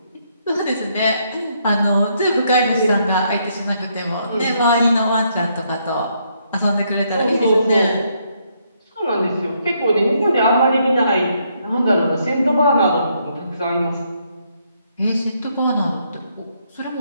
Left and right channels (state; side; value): inverted; both; correlation -0.73